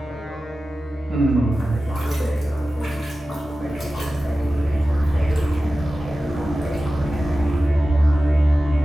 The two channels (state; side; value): normal; both; correlation 0.95